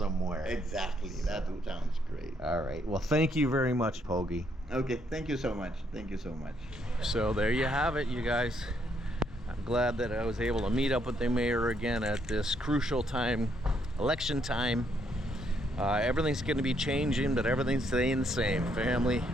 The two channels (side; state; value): both; normal; correlation 0.73